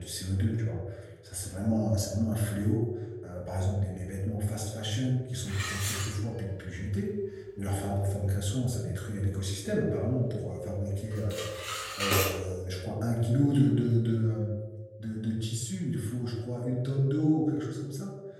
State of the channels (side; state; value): both; identical; correlation 1.00